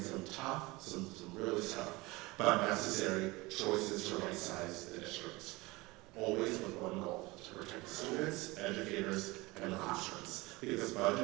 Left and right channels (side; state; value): left; quieter; 22.6 dB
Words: some tough, some really tough, but necessary choices to right-size the district. Always with one goal: to protect students, educators, and the classrooms. Because